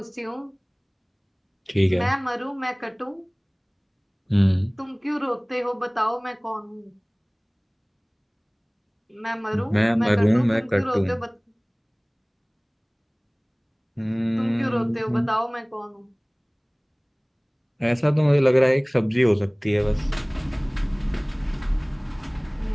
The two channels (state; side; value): identical; both; correlation 1.00